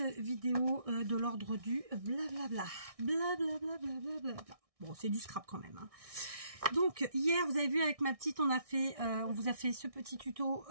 vidéo de l'ordre du blablabla. Blablabla, blablabla. Bon, c'est du scrap quand même. Hein. Donc hier vous avez vu avec ma petite, on vous a fait ce petit tuto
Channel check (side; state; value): left; late; 1.6 ms